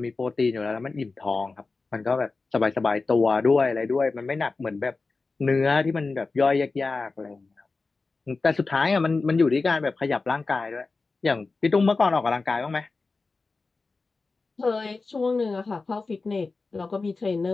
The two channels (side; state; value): right; quieter; 3.9 dB